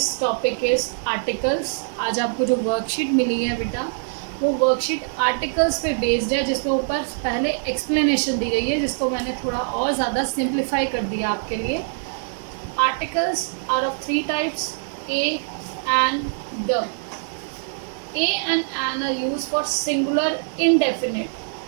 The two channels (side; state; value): left; silent; digital silence